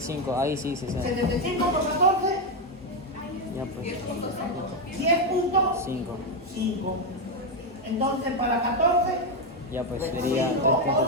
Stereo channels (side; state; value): both; normal; correlation 0.06